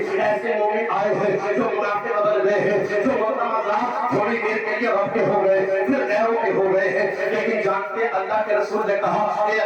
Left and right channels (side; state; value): both; identical; correlation 1.00